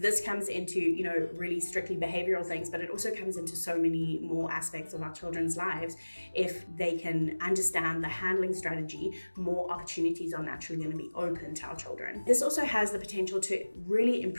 this comes into, really strictly behavioral things, but it also comes into so many more aspects of our children's lives. If they can understand the handling strategy, more opportunities are naturally going to be open to our children. This also has the potential to really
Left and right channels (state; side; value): inverted; both; correlation -1.00